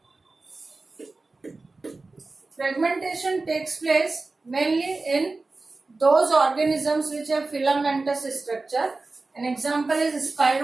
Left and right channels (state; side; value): quieter; left; 3.5 dB